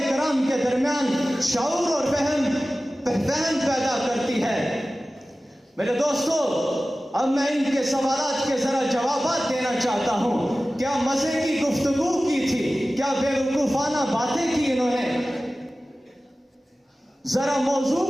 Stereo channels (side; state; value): both; normal; correlation 0.96